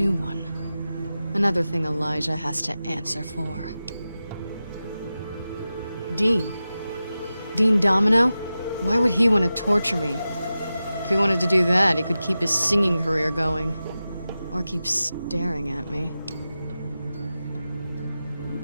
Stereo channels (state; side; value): inverted; both; correlation -0.93